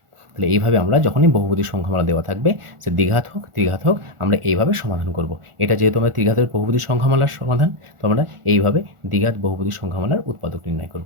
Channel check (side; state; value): left; late; 1.4 ms